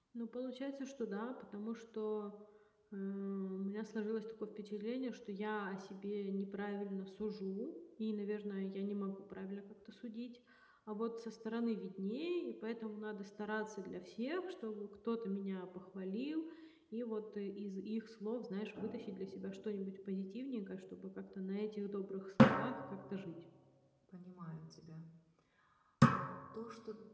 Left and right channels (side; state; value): both; identical; correlation 1.00